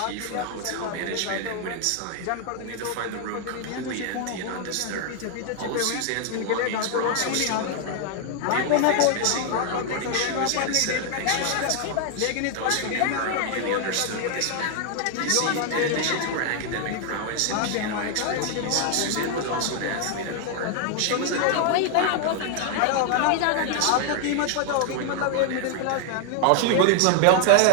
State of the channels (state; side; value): different; both; correlation 0.00